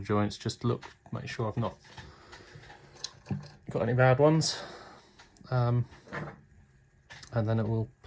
joints, just look, make sure I've not got any bad ones, and then it will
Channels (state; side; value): identical; both; correlation 1.00